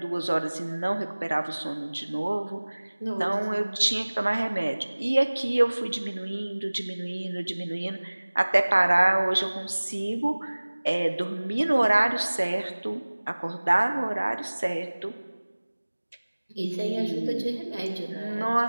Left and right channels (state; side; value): inverted; both; correlation -1.00